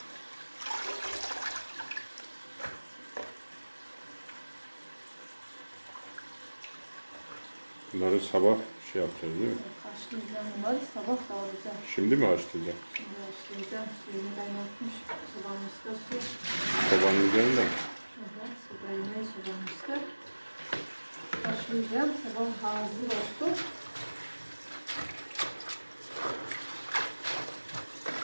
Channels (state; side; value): inverted; both; correlation -1.00